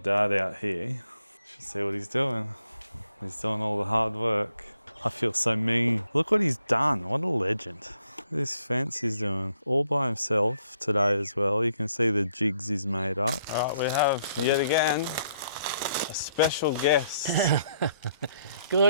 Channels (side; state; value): both; inverted; correlation -0.72